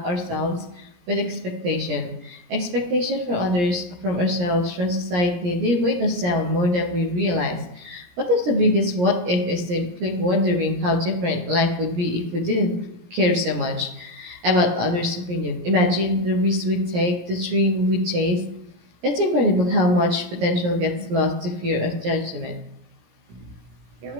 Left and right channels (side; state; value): left; late; 17 ms